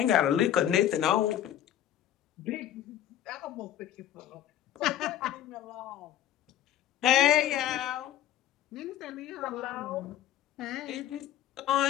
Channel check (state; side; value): quieter; right; 11.5 dB